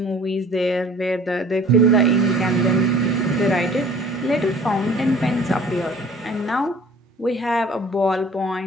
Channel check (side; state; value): both; normal; correlation 0.49